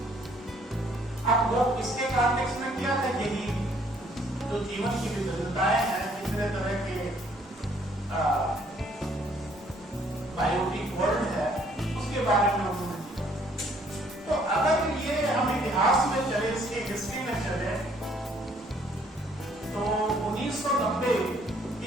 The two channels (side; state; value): both; normal; correlation 0.63